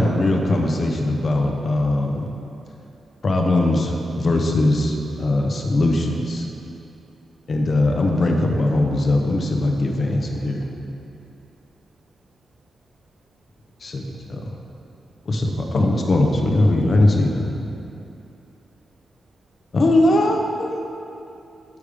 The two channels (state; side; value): normal; both; correlation 0.90